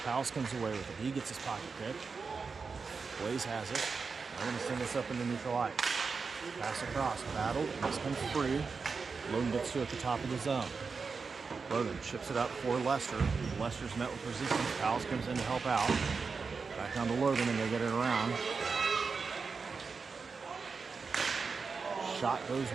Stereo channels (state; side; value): quieter; left; 4.9 dB